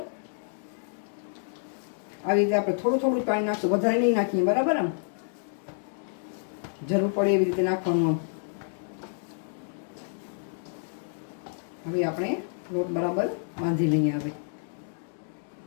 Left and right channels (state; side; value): silent; right; digital silence